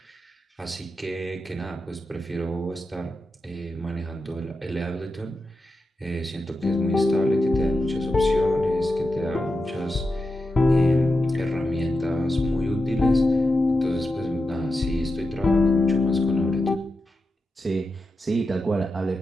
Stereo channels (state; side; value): normal; both; correlation 0.89